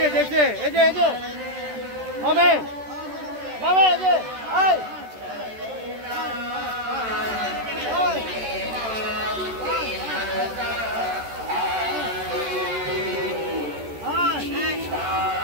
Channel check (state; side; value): late; left; 13 ms